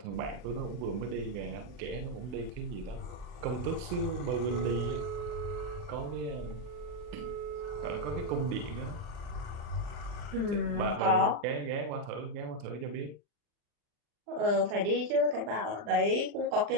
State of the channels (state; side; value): late; left; 39 ms